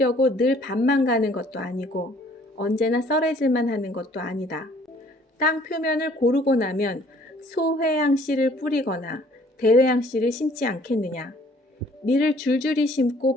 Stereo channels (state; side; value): normal; both; correlation 0.58